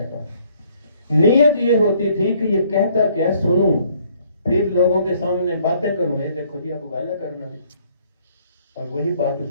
نیت یہ ہوتی تھی کہ یہ کہتا کیا سنوں، پھر لوگوں کے سامنے باتیں کروں، یہ دیکھو جی آپ کو گالا کرنا بھی، اور وہی بات اس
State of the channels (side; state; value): both; inverted; correlation -0.63